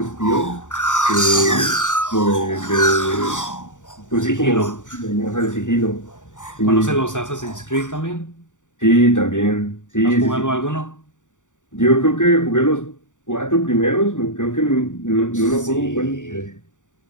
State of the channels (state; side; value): late; right; 0.86 ms